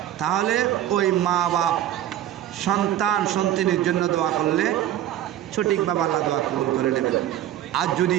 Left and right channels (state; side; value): quieter; left; 12.1 dB